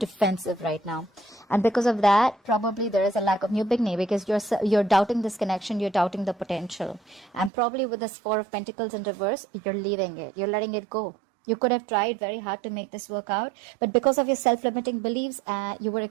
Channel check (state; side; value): drops out; left; at 7.5 s